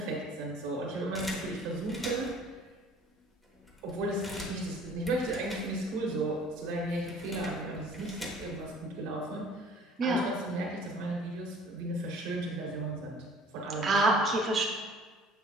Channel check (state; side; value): normal; both; correlation 0.50